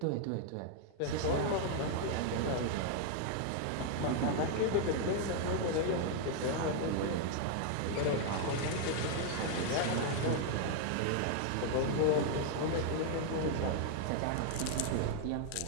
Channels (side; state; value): both; different; correlation 0.00